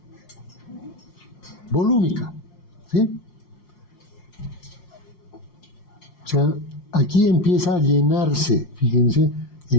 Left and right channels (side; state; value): right; late; 5.7 ms